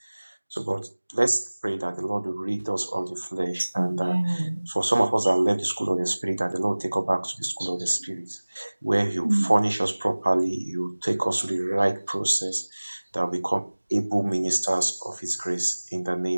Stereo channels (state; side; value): inverted; both; correlation -1.00